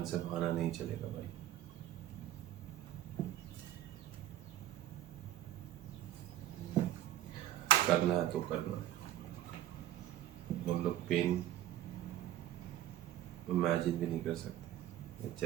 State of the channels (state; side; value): quieter; left; 13.3 dB